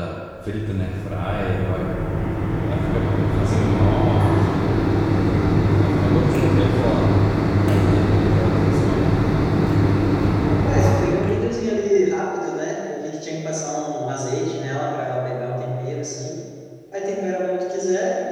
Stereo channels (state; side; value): identical; both; correlation 1.00